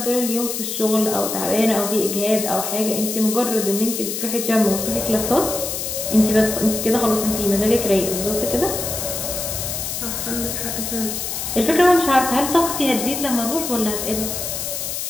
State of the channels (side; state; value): left; noise; hiss, 4 dB below the sound